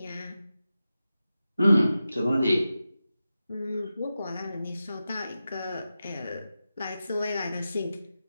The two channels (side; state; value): both; inverted; correlation -0.92